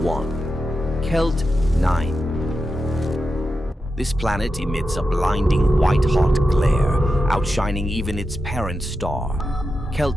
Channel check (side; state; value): both; normal; correlation 0.89